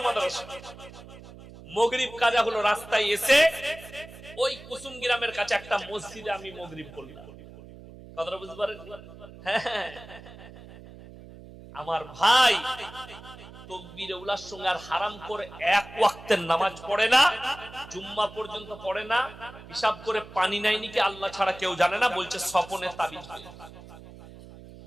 মাদ্রাসা, মাগরিব কাজা হলো, রাস্তায় এসে ওই কুসুম গ্রামের কাছে একটা মসজিদে আমি মাগরিব পড়লাম। কথাটা বুঝতে পারেন? হ্যাঁ, আমার ভাই তাকবীরে উলার সঙ্গে আর হারাম করে এক ওয়াক্তের নামাজ পড়ে না, জুম্মা পর্যন্ত পড়ে না, হিসাব করে পানি নাই নাকি আল্লাহ ছাড়া কেউ জানে না, বলছে স্বপনে তাবিজ।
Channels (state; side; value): noise; right; hum, 17 dB below the sound